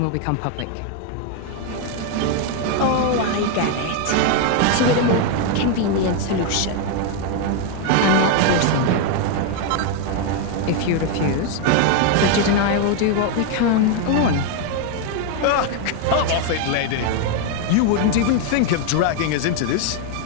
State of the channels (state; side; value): different; both; correlation 0.01